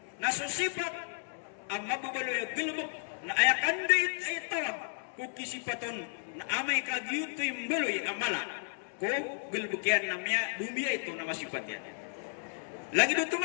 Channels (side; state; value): right; silent; 56 dB below the other